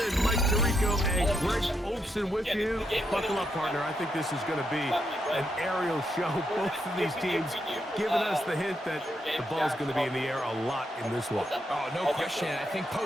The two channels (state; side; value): normal; both; correlation 0.80